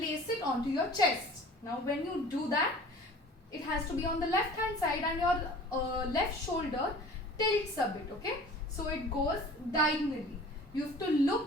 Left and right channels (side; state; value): both; normal; correlation 0.44